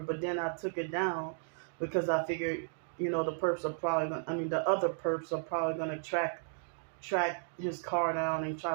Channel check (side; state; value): left; silent; digital silence